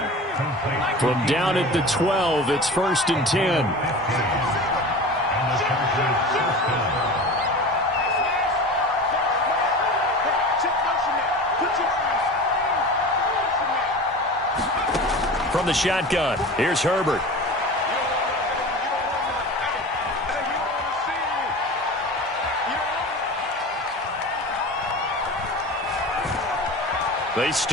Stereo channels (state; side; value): normal; both; correlation 0.33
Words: From down at the 12, it's 1st and 10. From the shotgun, here's Herbert. They